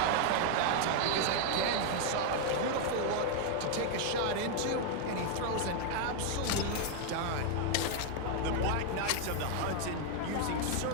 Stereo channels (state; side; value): different; both; correlation 0.01